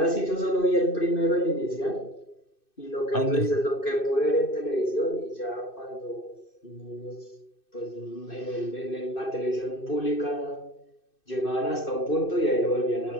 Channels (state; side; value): late; right; 2.6 ms